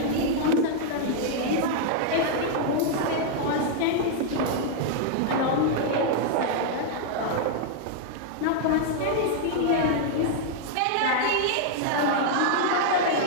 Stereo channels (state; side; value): different; both; correlation -0.01